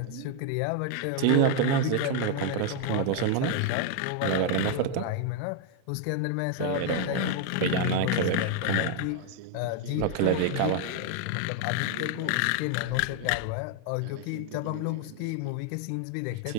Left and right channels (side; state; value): both; different; correlation 0.01